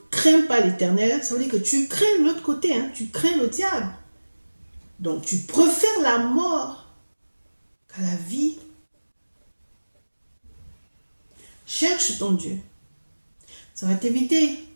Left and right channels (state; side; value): inverted; both; correlation -1.00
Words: crains pas l'Éternel, ça veut dire que tu crains l'autre côté, tu crains le diable. Donc tu préfères la mort qu'à la vie. Cherche ton Dieu. Ça va t'éviter